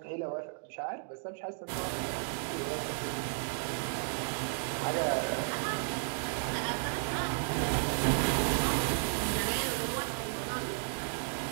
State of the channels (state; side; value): silent; left; digital silence